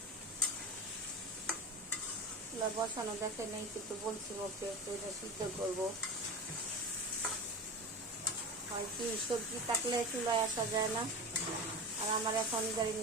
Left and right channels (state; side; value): normal; both; correlation 0.27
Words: বসানো দেখে নেই, কিন্তু বলছি ওকে এটা সিদ্ধ করবো। হয় কি, সবজি থাকলে চুলায় আসা যায় না, আর আমার এখন ধরেন